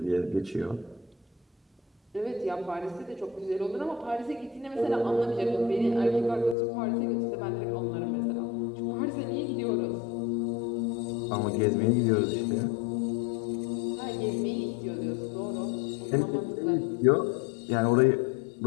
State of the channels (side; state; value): right; drops out; at 6.6 s